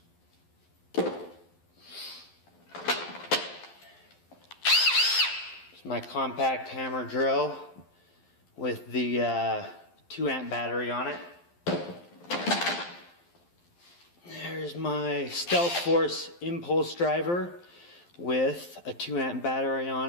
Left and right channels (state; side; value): late; right; 12 ms